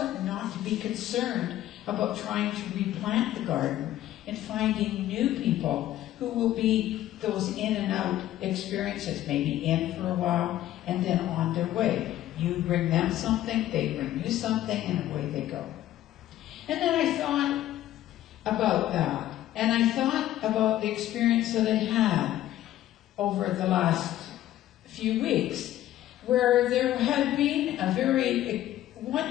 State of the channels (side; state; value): right; quieter; 13.5 dB